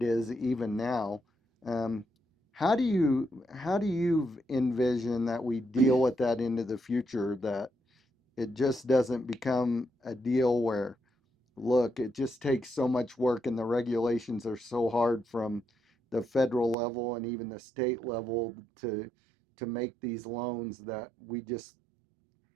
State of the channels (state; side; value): drops out; left; at 16.8 s